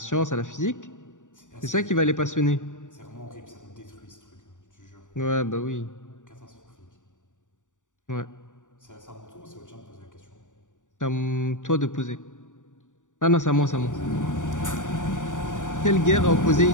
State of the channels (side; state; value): right; late; 0.86 ms